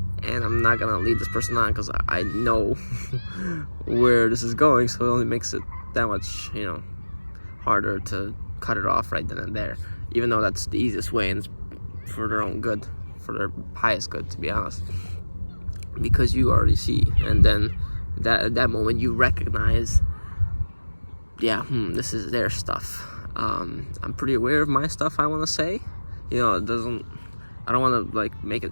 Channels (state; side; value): inverted; both; correlation -1.00